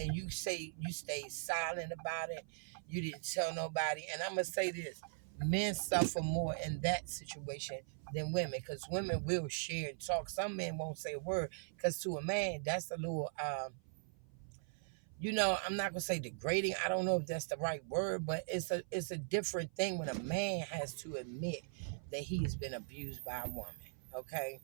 you say you stayed silent about it. You didn't tell nobody. And I'm gonna say this: men suffer more in that situation than women, because women will share and talk. Some men won't say a word, because to a man, that's a little I'm not gonna say degrading. I don't know if that's the right word, but it's a different thing when a man has to admit that he has been abused by a woman. Okay,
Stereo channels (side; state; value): left; silent; 51 dB below the other